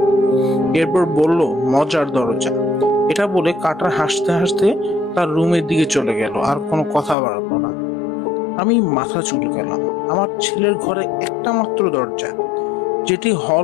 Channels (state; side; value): drops out; right; at 7.2 s